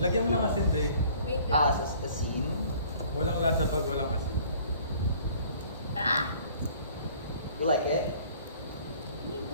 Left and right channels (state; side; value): inverted; both; correlation -0.53